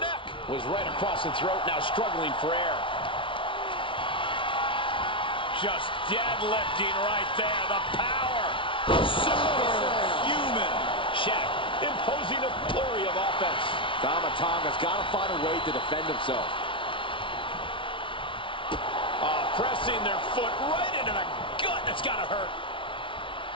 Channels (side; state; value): right; late; 0.25 ms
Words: Was right across the throat, now struggling for air. Just deadlifting right there, the power. Superhuman. Shaq imposing a flurry of offense. Tomatonga's got to find a way to defend himself. Pressing their foot right into the gut. That's got to hurt.